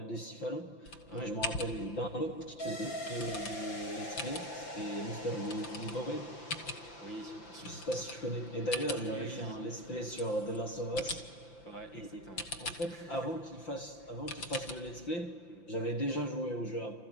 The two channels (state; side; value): late; right; 5.8 ms